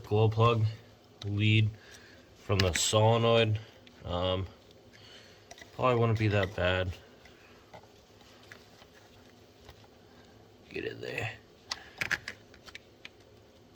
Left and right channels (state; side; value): identical; both; correlation 1.00